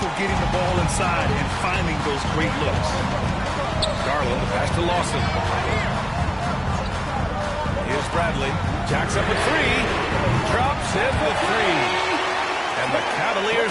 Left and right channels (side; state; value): both; identical; correlation 1.00